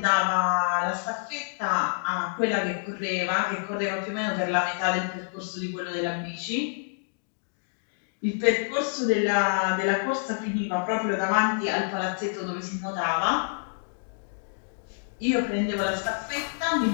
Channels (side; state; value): right; silent; digital silence